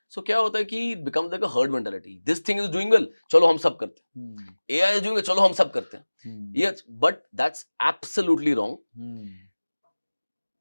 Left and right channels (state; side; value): inverted; both; correlation -1.00